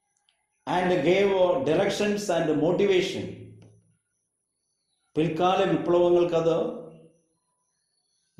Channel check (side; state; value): both; identical; correlation 1.00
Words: and gave directions and motivation. പിൽക്കാല വിപ്ലവങ്ങൾക്കത്